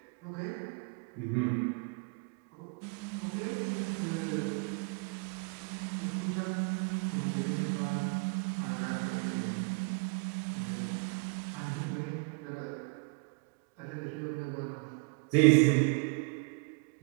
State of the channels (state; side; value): quieter; left; 34.5 dB